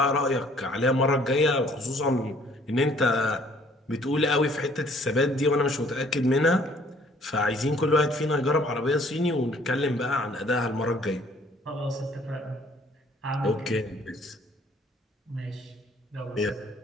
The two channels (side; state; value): both; normal; correlation 0.59